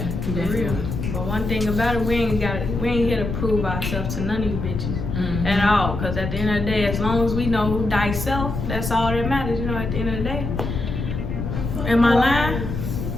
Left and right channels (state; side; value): noise; left; rumble, 4 dB below the sound